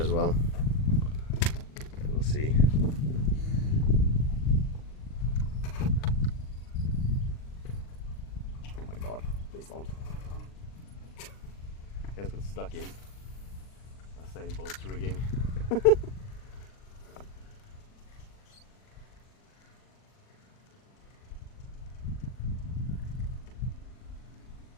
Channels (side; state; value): right; late; 40 ms